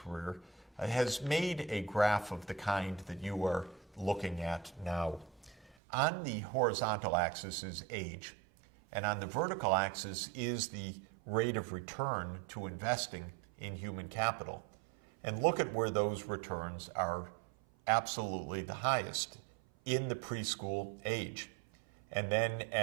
has made a graph of the kind that you are looking at now. On the horizontal axis is age, and on the vertical axis is the rate of return to investing in human capital. And look at where those returns are absolutely the highest in the preschool age. And then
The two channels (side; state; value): left; drops out; at 5.8 s